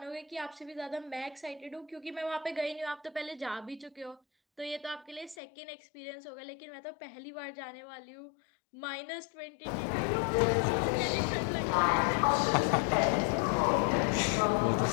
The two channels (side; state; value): right; drops out; at 5.4 s